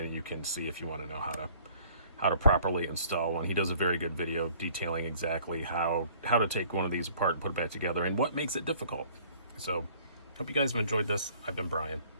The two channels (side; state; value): both; inverted; correlation -0.55